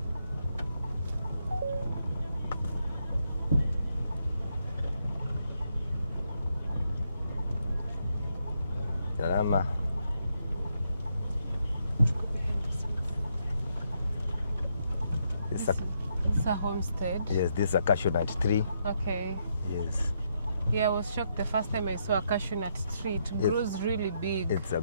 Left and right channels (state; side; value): inverted; both; correlation -0.78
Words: Salama. This is a homestead? Yes, this is a cashew nut tree. Okay. Yes. Yeah, I was shocked the first time I saw a cashew nut tree. It grows really big. It's a